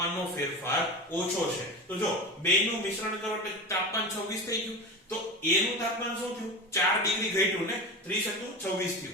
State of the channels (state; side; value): normal; both; correlation 0.26